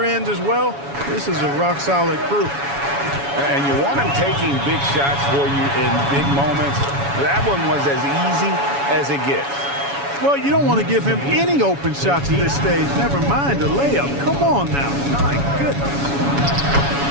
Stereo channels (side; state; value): left; late; 7.1 ms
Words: end as well. This is a rock-solid crew. And you want him taking big shots for you in big moments. That one was as easy as it gets. Well, you don't want to give him any open shots at this stage. Never mind a layup. Come on now. My goodness.